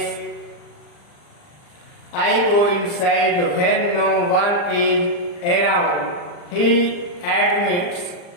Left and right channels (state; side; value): late; right; 40 ms